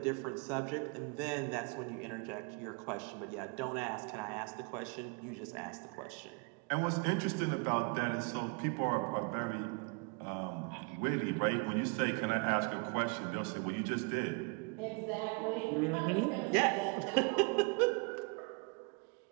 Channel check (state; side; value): quieter; left; 33.7 dB